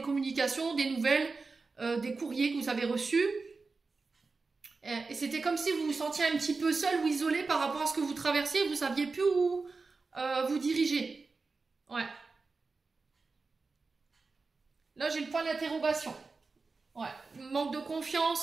communications, des nouvelles, des courriers que vous avez reçus. Et c'était comme si vous vous sentiez un petit peu seul ou isolé par rapport à ce que vous traversiez, vous saviez plus où vous diriger. Ouais. Là, j'ai le point d'interrogation. Ouais. Manque de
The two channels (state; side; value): quieter; left; 4.1 dB